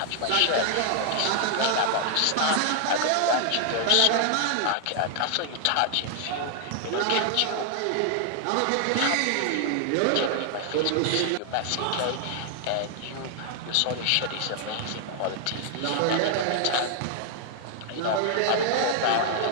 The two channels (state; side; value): different; both; correlation 0.00